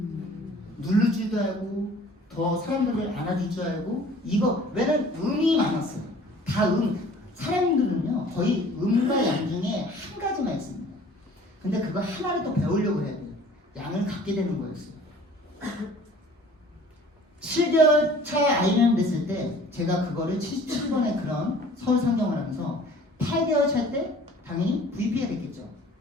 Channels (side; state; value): both; normal; correlation 0.50